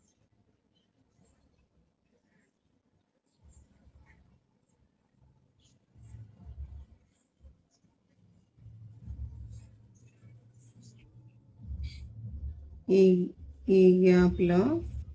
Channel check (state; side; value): identical; both; correlation 1.00